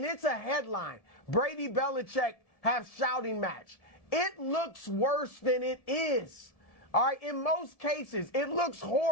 it's a headline, Brady Belichick have shouting match, it looks worse than it is. All right, in most cases, it looks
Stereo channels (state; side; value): late; right; 1.7 ms